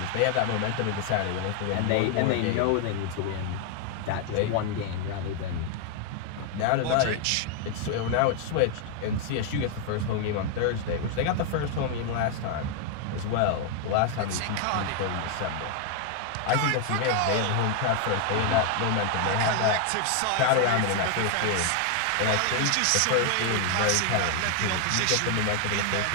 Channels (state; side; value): different; both; correlation 0.00